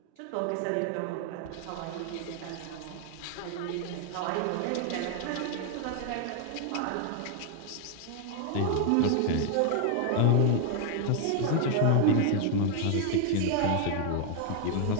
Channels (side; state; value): both; different; correlation 0.00